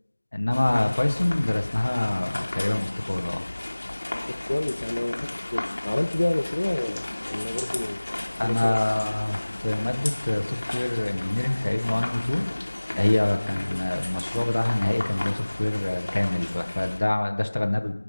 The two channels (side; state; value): both; inverted; correlation -1.00